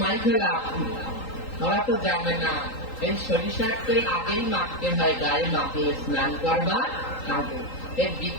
মাইকে লাভ। ওরা তো জানে না এই সরিষার তেল আগেই মাখতে হয়, গায়ে মাখলে স্নান করবার আগে। এর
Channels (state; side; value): late; right; 3.8 ms